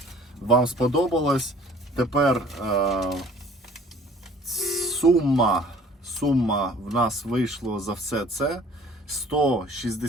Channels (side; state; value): both; normal; correlation 0.52